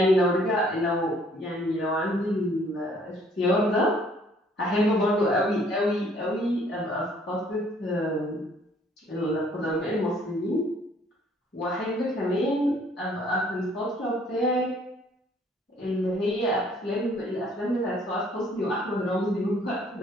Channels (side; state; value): both; normal; correlation 0.61